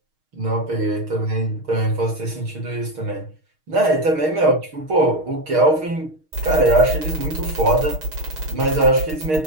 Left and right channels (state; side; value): late; left; 6.4 ms